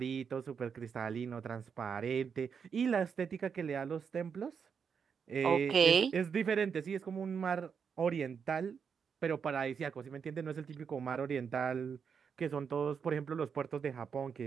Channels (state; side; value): quieter; left; 6.6 dB